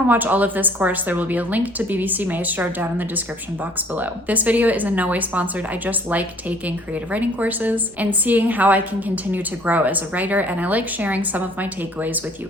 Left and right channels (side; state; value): both; normal; correlation 0.56